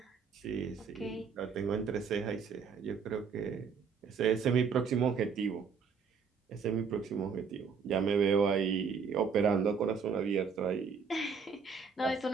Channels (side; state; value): left; quieter; 5.8 dB